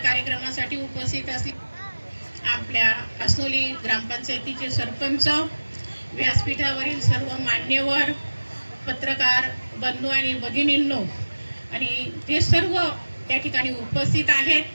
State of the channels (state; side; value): inverted; both; correlation -1.00